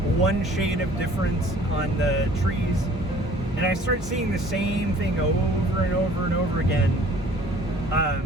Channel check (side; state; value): both; normal; correlation 0.53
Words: 1 shade of difference on the trees, and I start seeing the same thing over and over and over again.